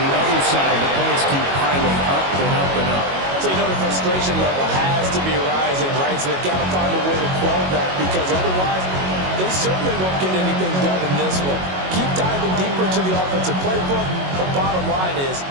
the other side, the points keep piling up and up and up. So you know the frustration level has to be rising, right? So they've got to find a way to quell that because otherwise they certainly won't get anything done in this one. Keep diving deeper to the offensive playbook. The bottom line is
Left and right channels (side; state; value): left; late; 22 ms